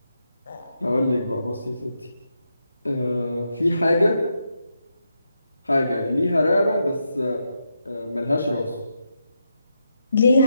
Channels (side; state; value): both; inverted; correlation -0.84